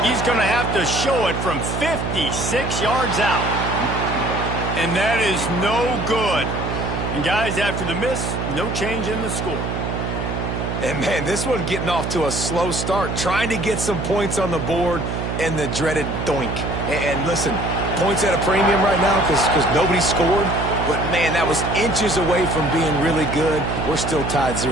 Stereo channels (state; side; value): noise; right; hum, 3 dB below the sound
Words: He's going to have to show it from 56 yards out. And that is no good. And guys, after the miss, no change in the score. And man, this one getting off to a slow start, trying to get some points on the board, and the dreaded doink. And listen, points at a premium right now because nobody scored. But, man, that was inches away from being really good. We're still tied